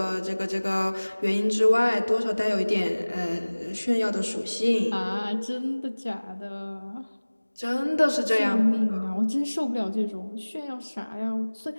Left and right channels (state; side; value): inverted; both; correlation -1.00